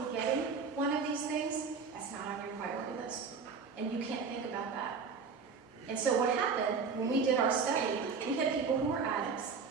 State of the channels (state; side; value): quieter; left; 5.3 dB